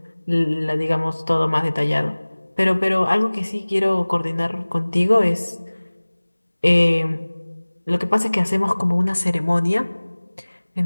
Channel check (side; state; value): both; inverted; correlation -1.00